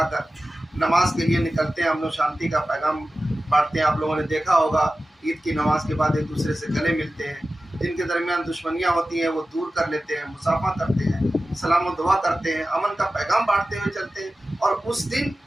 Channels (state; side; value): normal; both; correlation 0.95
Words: नमाज के लिए निकलते हैं। हम लोग शांति का पैगाम बांटते हैं। आप लोगों ने देखा होगा ईद की नमाज के बाद एक दूसरे से गले मिलते हैं, जिनके दरमियान दुश्मनियाँ होती हैं वो दूर कर लेते हैं, मुसाफा करते हैं, सलाम और दुआ करते हैं, अमन का पैगाम बांटते हुए चलते हैं। और उस दिन